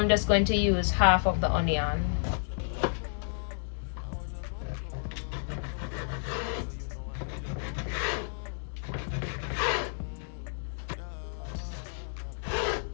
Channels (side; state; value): right; silent; digital silence